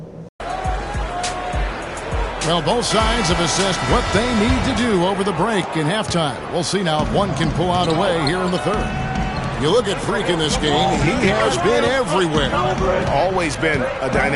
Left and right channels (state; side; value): identical; both; correlation 1.00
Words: Well, both sides have assessed what they need to do over the break in halftime. We'll see now if one can pull out a way here in the third. You look at Freak in this game, he has been everywhere. Always been a